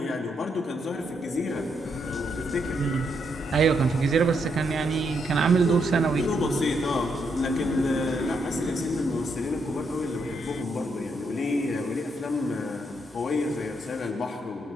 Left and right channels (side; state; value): both; normal; correlation 0.78